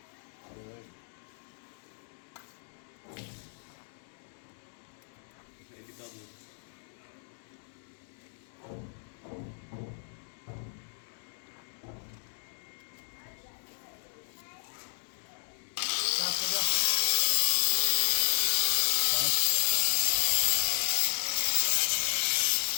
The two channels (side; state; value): right; silent; digital silence